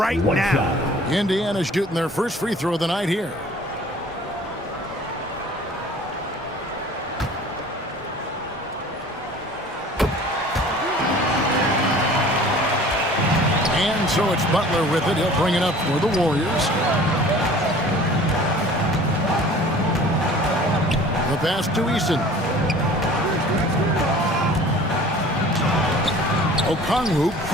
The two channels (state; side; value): normal; both; correlation 0.47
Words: now. Indiana's shooting their first free throw of the night here. And so it's Butler with it. He'll bring it up for the Warriors. The pass to Eason. Okongwu